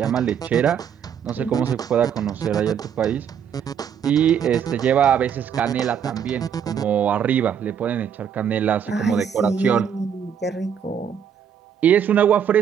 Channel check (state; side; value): quieter; left; 8.2 dB